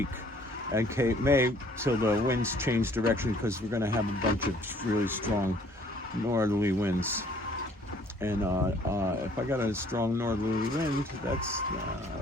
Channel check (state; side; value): normal; both; correlation 0.59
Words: at Cape May till the winds change direction, because we're going to have a bunch of really strong northerly winds. And if I got a strong northerly wind, that's